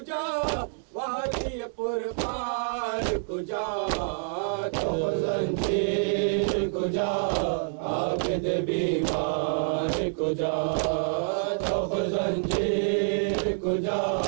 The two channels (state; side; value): silent; left; digital silence